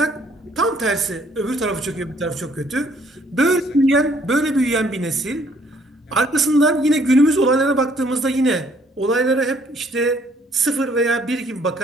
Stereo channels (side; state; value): both; normal; correlation 0.63